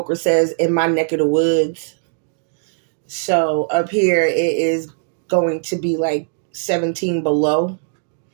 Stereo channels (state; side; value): silent; left; digital silence